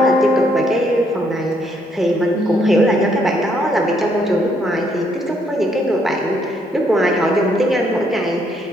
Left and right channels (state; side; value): normal; both; correlation 0.71